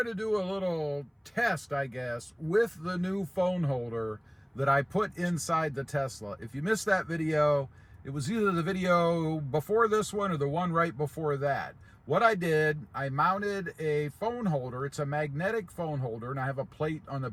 to do a little test, I guess, with the new phone holder that I put inside the Tesla. If you missed that video, it was either the video before this one or the one right before that. What I did, I mounted a phone holder. It's a magnetic phone holder, and I have a plate on the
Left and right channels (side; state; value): both; identical; correlation 1.00